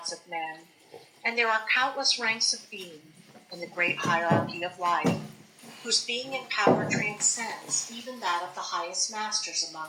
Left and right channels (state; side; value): identical; both; correlation 1.00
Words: of men, and there are countless ranks of being in the great hierarchy of life, whose being and power transcends even that of the highest masters